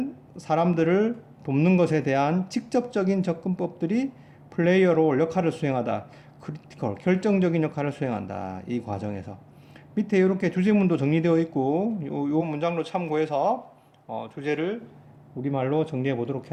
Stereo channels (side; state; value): both; identical; correlation 1.00